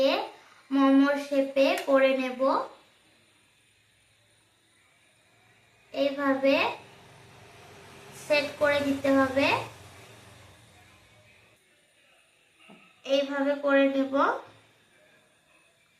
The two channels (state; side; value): identical; both; correlation 1.00